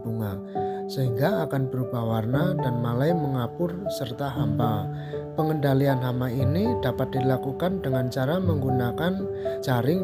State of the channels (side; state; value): both; identical; correlation 1.00